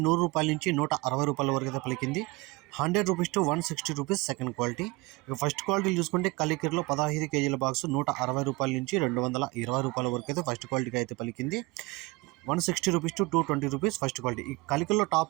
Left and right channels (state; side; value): quieter; left; 23.5 dB